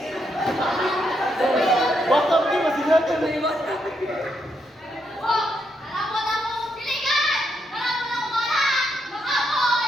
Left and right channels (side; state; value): both; normal; correlation 0.79